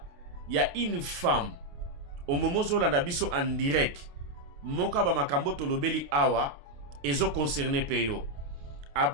il y a une femme au moment où l'on a biso en direct. Moka ba makambo tolobeli awa ezo concerné peyo.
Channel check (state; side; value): late; left; 28 ms